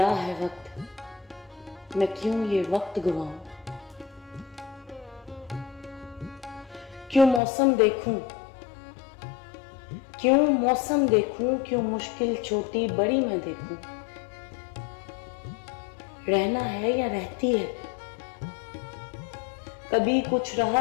है वक्त, मैं क्यों ये वक्त गवाऊं। क्यों मौसम देखूं, क्यों मौसम देखूं, क्यों मुश्किल छोटी बड़ी मैं देखूं। रहना है या रहती है, कभी कुछ रहा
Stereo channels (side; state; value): right; drops out; at 7.4 s